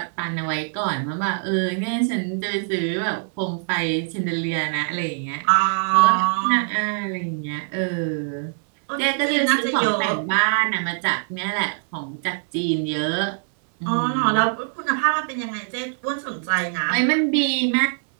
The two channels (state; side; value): silent; left; digital silence